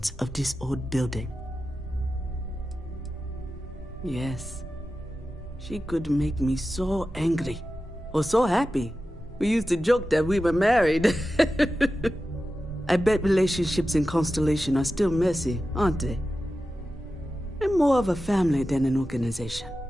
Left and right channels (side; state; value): both; normal; correlation 0.93